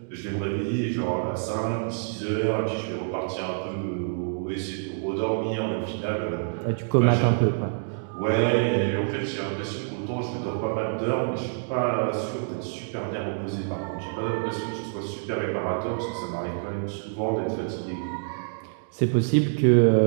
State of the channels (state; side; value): silent; left; digital silence